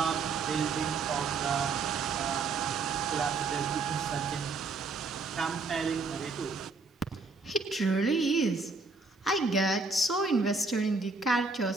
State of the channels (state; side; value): quieter; left; 4.0 dB